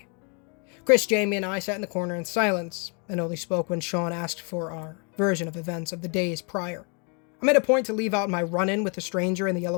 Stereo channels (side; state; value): right; quieter; 36.6 dB